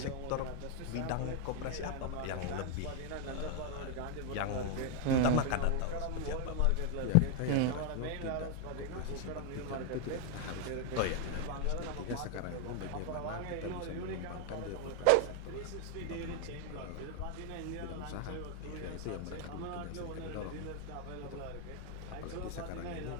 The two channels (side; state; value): both; different; correlation 0.00